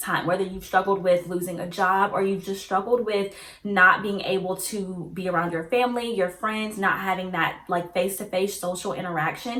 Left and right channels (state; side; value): identical; both; correlation 1.00